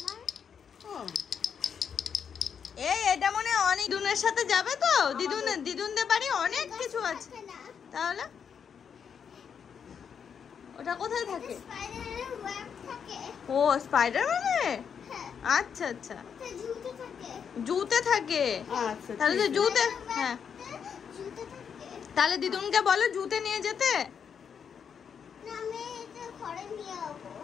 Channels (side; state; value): right; quieter; 7.2 dB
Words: ও এটা মনে হয় অনেক দিদুনের সাথে যাবে তো, দিদুনদের বাড়ি অনেক কিছু আছে। থাকে না। তাহলে ওটা কোথায় থাকে? স্পাইডারের ওয়েব থাকে। ও স্পাইডারম্যানে। হ্যাঁ, আচ্ছা আচ্ছা, ওটা জুতে থাকে। জুতে থাকে। আচ্ছা তাহলে তো জুতে, হ্যাঁ জুতে থাকে। তাহলে দিদুনকে বলো জুতে নিয়ে যেতে। না, আমি এটা ঘরে নিয়ে যাবো।